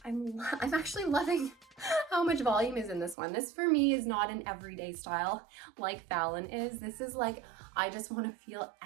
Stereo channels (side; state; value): left; drops out; at 3.2 s